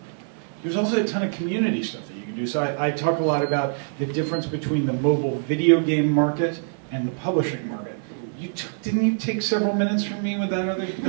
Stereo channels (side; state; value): left; silent; digital silence